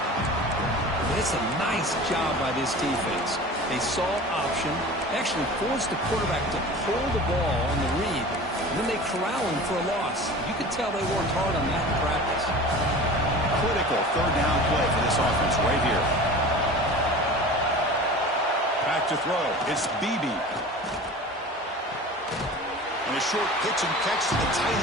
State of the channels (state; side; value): normal; both; correlation 0.38